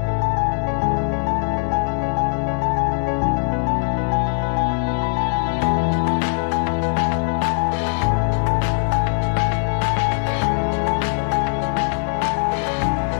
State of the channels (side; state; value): right; silent; 57 dB below the other